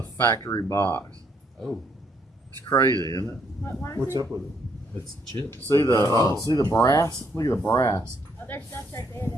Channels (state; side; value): normal; both; correlation 0.71